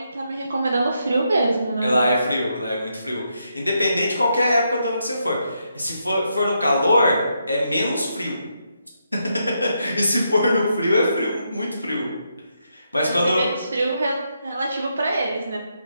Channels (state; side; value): inverted; both; correlation -0.80